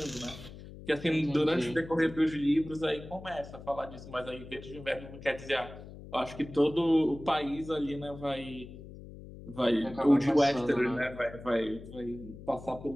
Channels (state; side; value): noise; left; hum, 15 dB below the sound